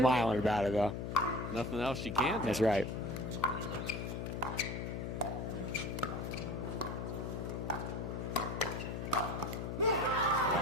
about it though. Nothing else you can do. That's right.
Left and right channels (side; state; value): left; noise; hum, 4 dB below the sound